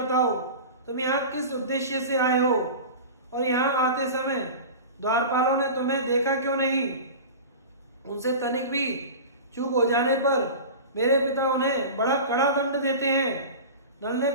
तुम यहाँ किस उद्देश्य से आए हो और यहाँ आते समय द्वारपालों ने तुम्हें देखा क्यों नहीं। उनसे तनिक भी चूक हो जाने पर मेरे पिता उन्हें बड़ा कड़ा दंड देते हैं। नल ने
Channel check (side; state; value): both; inverted; correlation -0.32